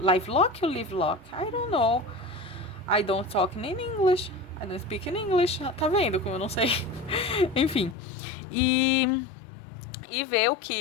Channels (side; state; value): right; drops out; at 8.0 s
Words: Lock ou Live Lock? I don't know. I don't talk in English. I don't speak in English. Tá vendo como eu não sei? Enfim. E ver o